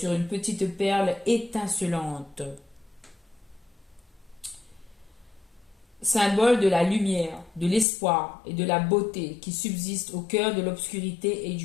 une petite perle étincelante. Symbole de la lumière, de l'espoir et de la beauté qui subsistent au cœur de l'obscurité et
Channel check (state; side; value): drops out; right; at 7.9 s